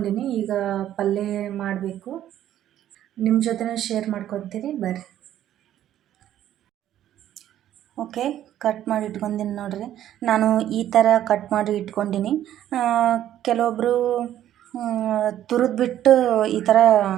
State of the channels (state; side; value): quieter; left; 11.8 dB